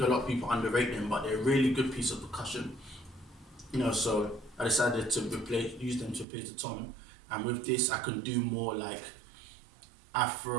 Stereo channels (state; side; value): drops out; left; at 6.2 s